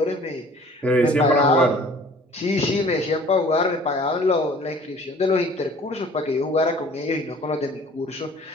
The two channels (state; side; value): normal; both; correlation 0.50